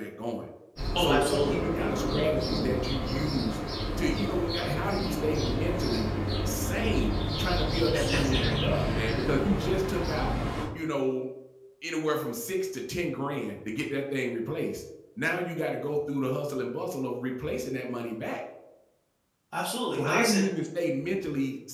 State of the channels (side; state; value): both; identical; correlation 1.00